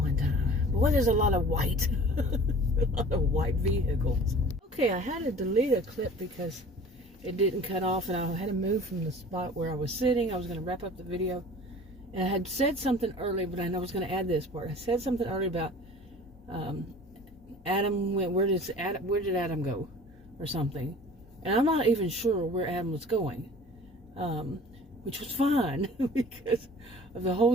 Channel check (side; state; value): both; normal; correlation 0.44